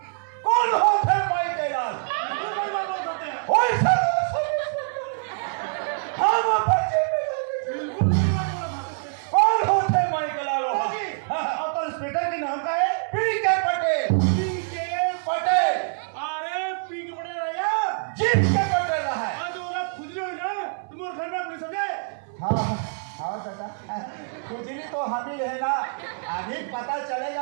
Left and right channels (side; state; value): left; silent; 62 dB below the other